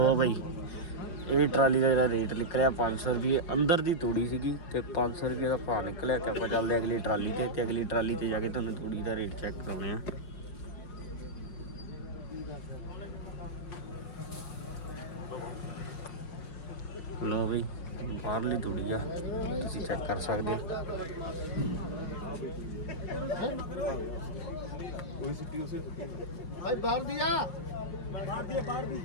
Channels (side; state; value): right; late; 5.6 ms